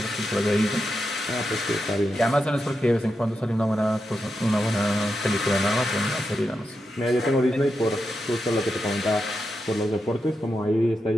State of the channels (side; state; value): both; normal; correlation 0.87